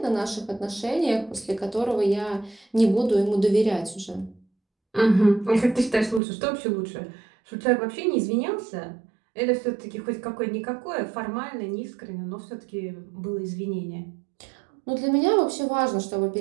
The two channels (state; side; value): drops out; left; at 6.2 s